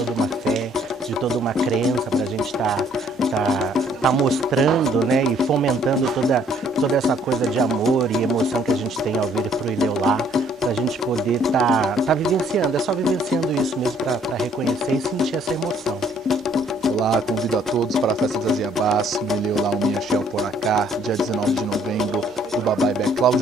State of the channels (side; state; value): both; normal; correlation 0.63